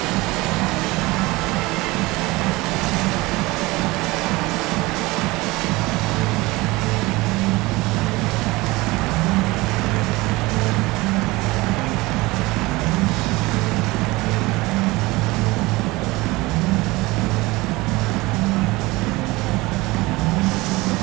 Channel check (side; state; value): left; quieter; 21.5 dB